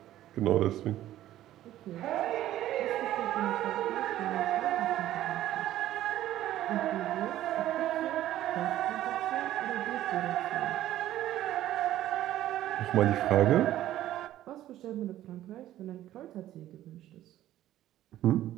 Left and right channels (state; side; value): quieter; left; 13.4 dB